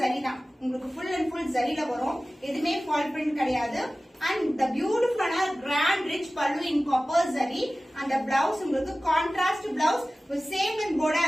தான், உங்களுக்கு ஃபுல் அண்ட் ஃபுல் ஜரியில வரும். எதுவுமே ஃபால் பிரிண்ட் கிடையாது. And the beautiful grand rich pallu in copper zari and the blouse உங்களுக்கு contrast blouse with same in border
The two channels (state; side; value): normal; both; correlation 0.97